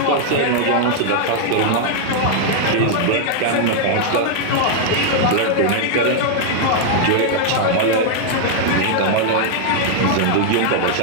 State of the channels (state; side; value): different; both; correlation 0.00